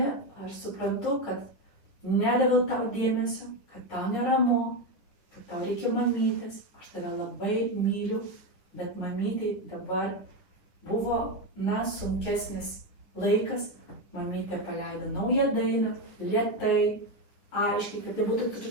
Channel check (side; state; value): right; late; 10 ms